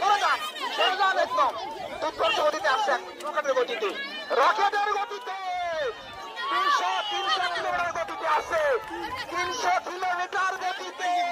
যান, সরে যান একদম। দুর্ধর্ষ গতিতে আসছেন, রকেটের গতিতে, রকেটের গতিতে 300 কিলোমিটার গতিতে আসছে, 300 কিলোমিটার গতিতে,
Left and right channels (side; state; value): both; identical; correlation 1.00